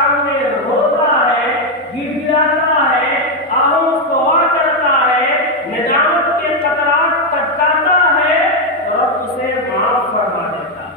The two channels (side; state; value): both; normal; correlation 0.04